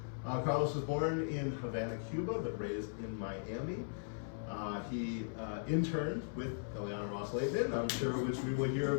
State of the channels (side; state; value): right; silent; 52 dB below the other